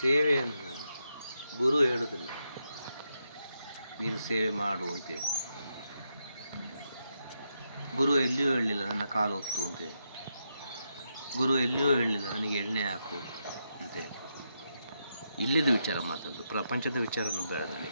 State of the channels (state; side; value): inverted; both; correlation -0.83